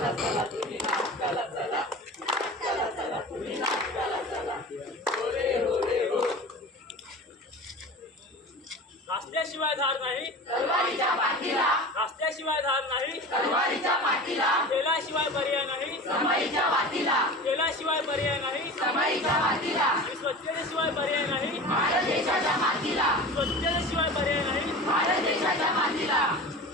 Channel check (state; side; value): normal; both; correlation 0.34